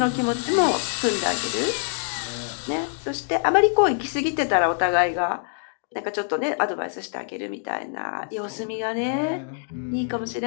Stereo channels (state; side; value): silent; right; digital silence